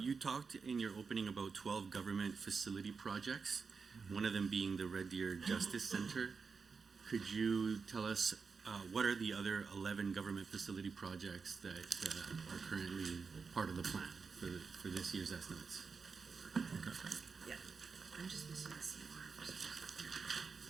talked in your opening about 12 government facility projects, one of them being the Red Deer Justice Center. Could you tell us what are the other 11 government facility projects that are currently part of the plan for this year's estimates? Yeah. I'm just missing the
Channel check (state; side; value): quieter; left; 5.1 dB